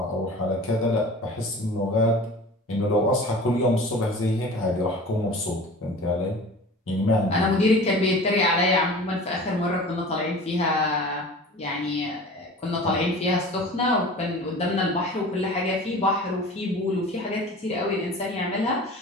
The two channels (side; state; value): both; normal; correlation 0.39